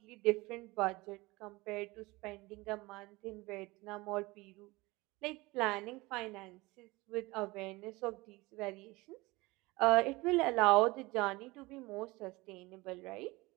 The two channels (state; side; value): quieter; left; 22.2 dB